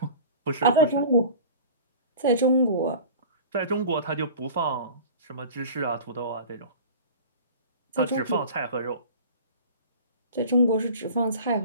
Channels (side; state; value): both; inverted; correlation -0.39